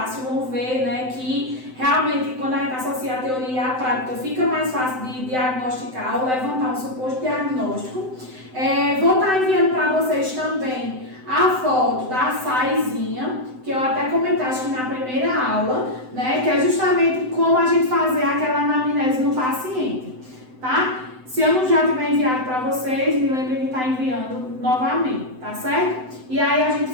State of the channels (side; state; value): left; late; 7.8 ms